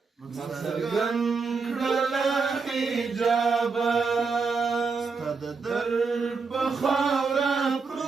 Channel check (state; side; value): quieter; left; 4.8 dB